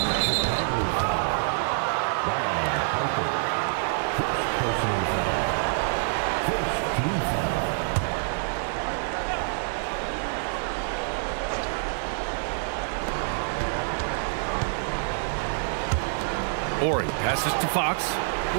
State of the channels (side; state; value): left; silent; digital silence